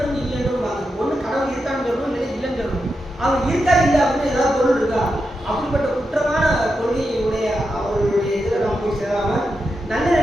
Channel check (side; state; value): both; normal; correlation 0.87